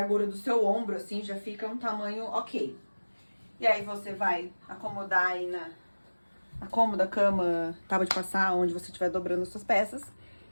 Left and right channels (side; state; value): both; inverted; correlation -1.00